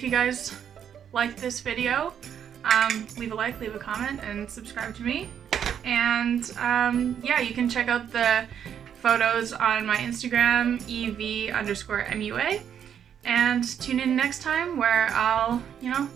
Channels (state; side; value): quieter; left; 8.7 dB